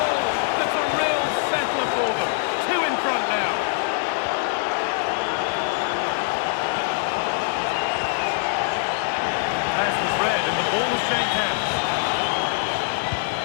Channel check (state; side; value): silent; right; digital silence